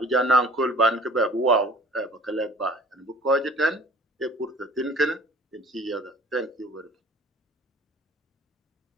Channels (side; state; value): both; normal; correlation 0.48